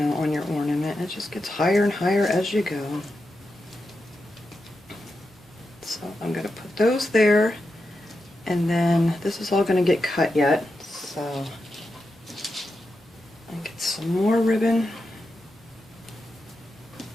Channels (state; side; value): normal; both; correlation 0.88